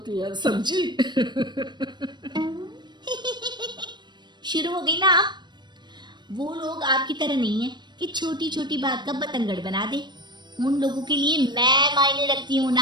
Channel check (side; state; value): left; late; 0.22 ms